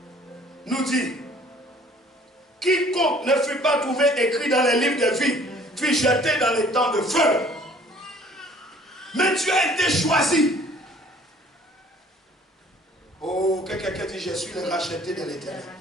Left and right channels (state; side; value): normal; both; correlation 0.54